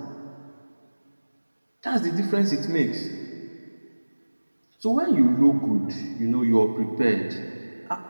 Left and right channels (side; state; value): both; inverted; correlation -1.00